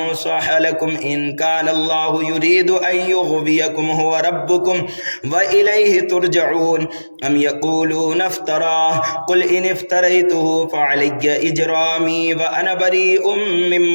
لكم إن كان الله يريد أن يغويكم هو ربكم وإليه ترجعون أم يقولون افتراه قل إن افتريته فعلي إجرامي وأنا بريء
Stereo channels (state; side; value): inverted; both; correlation -1.00